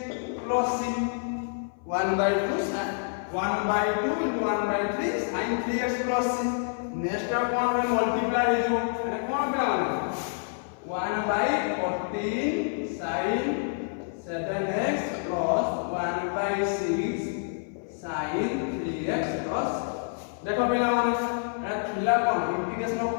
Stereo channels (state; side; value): silent; right; 57 dB below the other